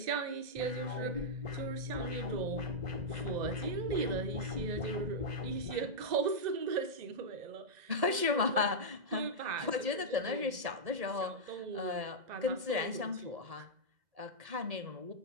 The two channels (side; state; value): left; late; 1.8 ms